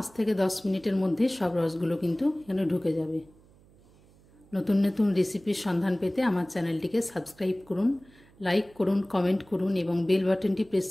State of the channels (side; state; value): right; noise; hum, 28 dB below the sound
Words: থেকে 10 মিনিটের মধ্যে সব রসগুলো কিন্তু এখানে ঢুকে যাবে। নতুন নতুন রেসিপির সন্ধান পেতে আমার চ্যানেলটিকে সাবস্ক্রাইব করুন, লাইক করুন, কমেন্ট করুন এবং বেল বাটনটি প্রেস